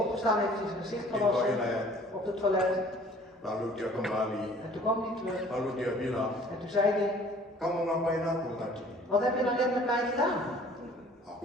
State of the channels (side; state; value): both; normal; correlation 0.52